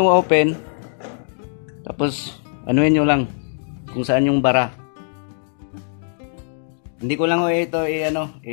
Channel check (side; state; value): right; silent; digital silence